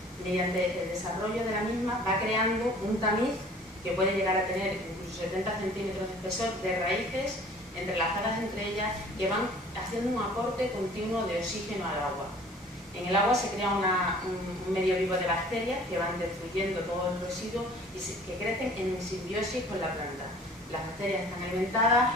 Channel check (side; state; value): both; normal; correlation 0.50